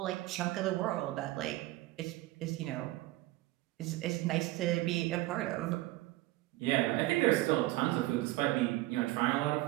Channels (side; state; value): left; quieter; 18.1 dB